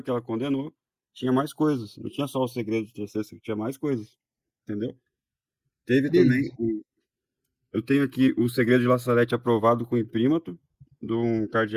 que ela condenou, tinha mais coisas, não tinha só o segredo de terceiro, tinha mais coisas, entendeu? Teve também, eu tenho aqui o segredo de La Salete aprovado com imprímato de um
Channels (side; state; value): both; identical; correlation 1.00